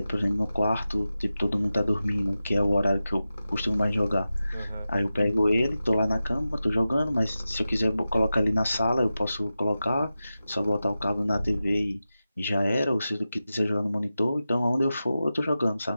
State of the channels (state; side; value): inverted; both; correlation -0.93